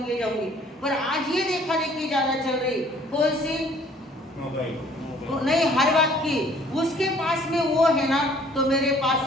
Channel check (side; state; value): both; normal; correlation 0.57